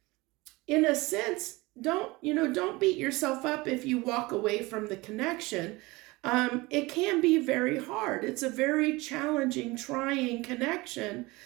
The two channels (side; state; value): left; quieter; 22.4 dB